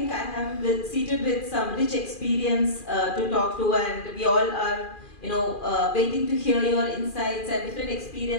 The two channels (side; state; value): right; late; 2.4 ms